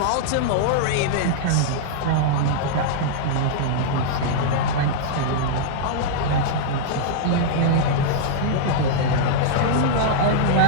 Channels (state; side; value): different; both; correlation -0.02